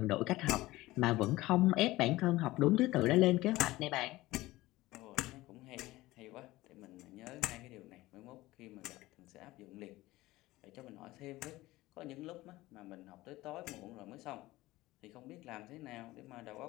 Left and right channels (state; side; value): quieter; right; 18.2 dB